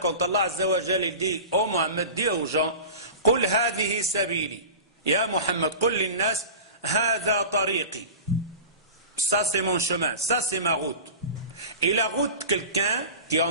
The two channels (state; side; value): inverted; both; correlation -0.33